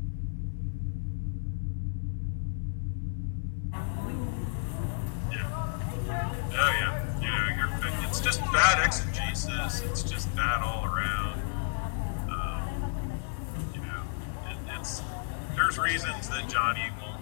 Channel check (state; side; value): silent; right; digital silence